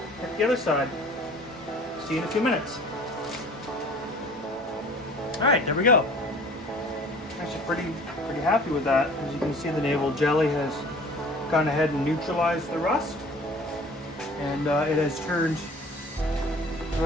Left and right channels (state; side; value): normal; both; correlation 0.48